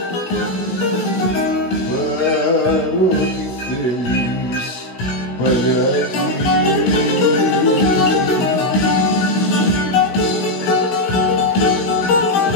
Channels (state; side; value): late; right; 16 ms